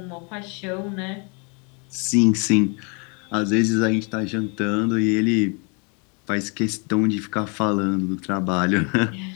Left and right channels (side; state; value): right; quieter; 34.3 dB